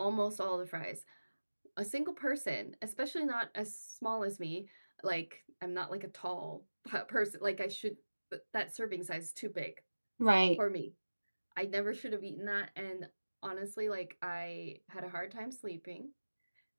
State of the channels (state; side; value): inverted; both; correlation -1.00